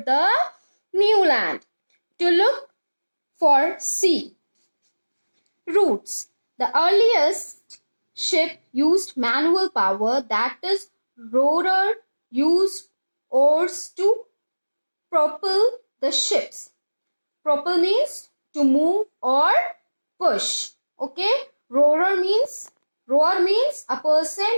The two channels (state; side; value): inverted; both; correlation -1.00